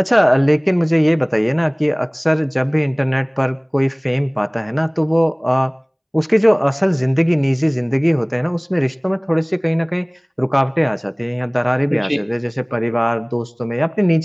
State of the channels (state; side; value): identical; both; correlation 1.00